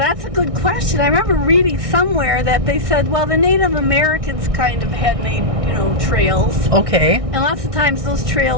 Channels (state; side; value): late; left; 1.6 ms